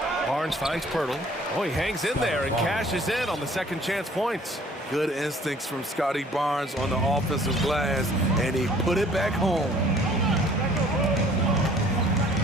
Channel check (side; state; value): both; normal; correlation 0.55